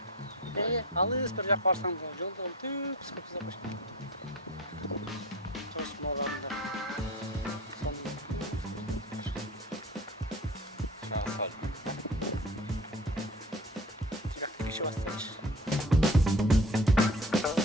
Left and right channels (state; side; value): normal; both; correlation 0.38